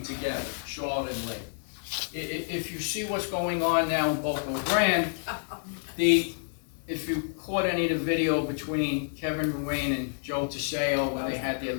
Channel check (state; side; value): silent; right; 59 dB below the other